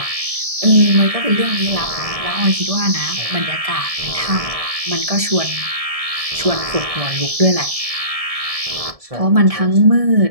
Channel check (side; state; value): left; late; 1.7 ms